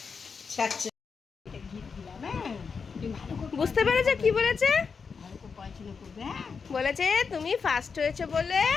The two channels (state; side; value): quieter; right; 5.5 dB